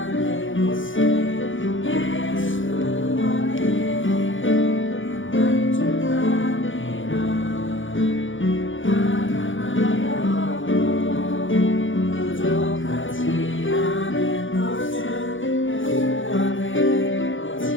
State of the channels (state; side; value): late; right; 0.57 ms